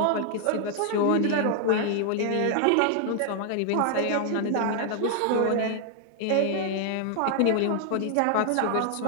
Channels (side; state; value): both; different; correlation 0.00